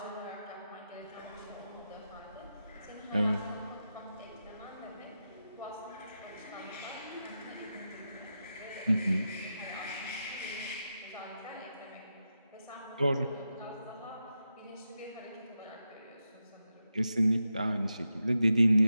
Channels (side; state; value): both; inverted; correlation -0.88